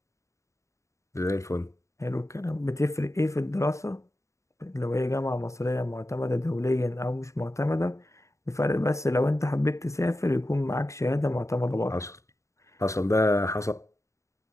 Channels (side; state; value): right; late; 0.15 ms